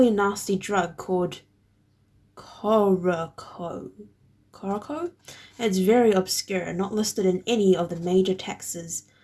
nasty drug called Coroco. It's very obscure, not listed in any of the major texts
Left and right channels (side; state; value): both; identical; correlation 1.00